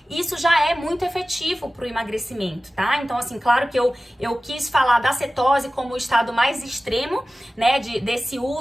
isso já é muito efetivo para o emagrecimento, tá? Então, assim, claro que eu quis falar da cetose como o estado mais extremo, né, desse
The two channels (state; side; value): normal; both; correlation 0.96